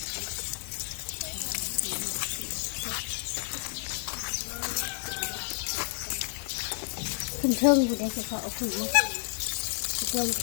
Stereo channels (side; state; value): right; silent; 57 dB below the other